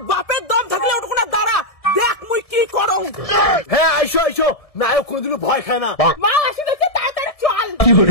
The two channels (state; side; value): late; right; 1.7 ms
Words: বাপের দম থাকলে ওটুকু না দাঁড়া, দেখ মুই কি করো। হ্যাঁ আইসো আইসো, নায়ক কোনোদিনও ভয় খায় না। মা আসি দেখে তাড়াতাড়ি চল।